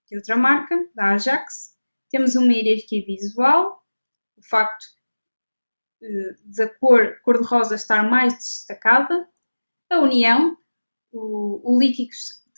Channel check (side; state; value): both; inverted; correlation -1.00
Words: de outra marca, da Ajax, temos uma hierarquia visual, o facto da cor cor-de-rosa estar mais destacada, a união, o líquido